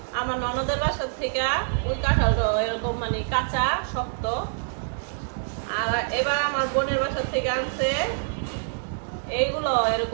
আমার ননদের বাসার থেকে ওই কাঁঠালটা এরকম মানে কাঁচা শক্ত আর এবার আমার বোনের বাসার থেকে আনছে এইগুলো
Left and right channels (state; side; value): silent; left; 61 dB below the other